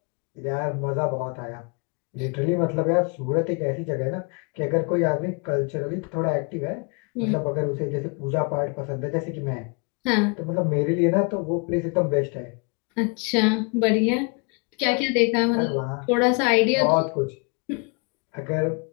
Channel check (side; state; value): right; quieter; 32.4 dB